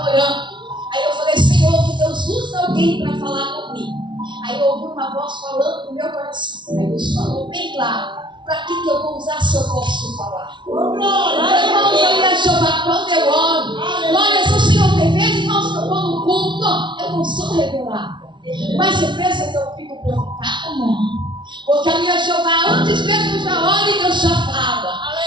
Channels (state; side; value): late; left; 0.23 ms